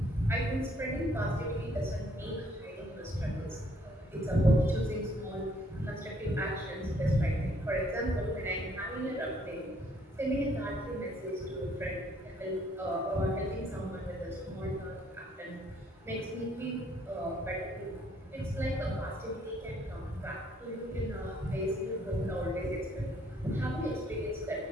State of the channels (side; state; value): both; normal; correlation 0.65